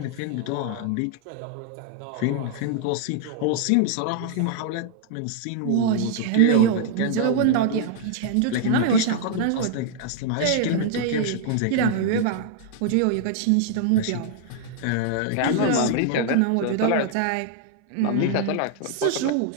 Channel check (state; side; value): different; both; correlation 0.00